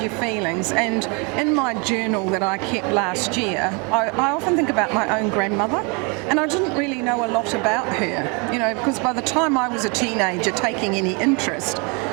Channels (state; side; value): quieter; left; 32.2 dB